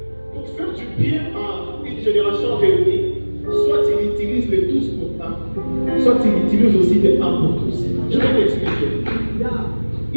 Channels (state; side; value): inverted; both; correlation -1.00